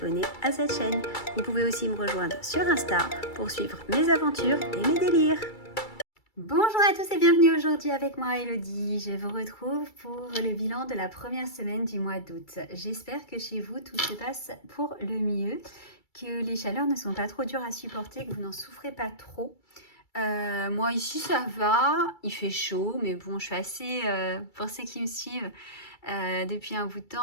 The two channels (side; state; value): right; late; 2.3 ms